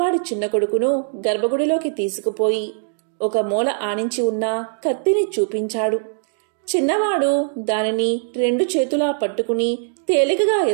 చిన్న కొడుకును గర్భగుడిలోకి తీసుకుపోయి ఒక మూల ఆనించి ఉన్న కత్తిని చూపించాడు. చిన్నవాడు దానిని 2 చేతులా పట్టుకుని తేలికగా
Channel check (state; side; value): silent; left; 65 dB below the other